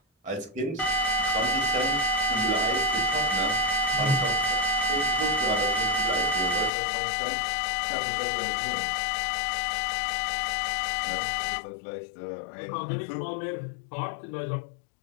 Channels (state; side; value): drops out; right; at 6.7 s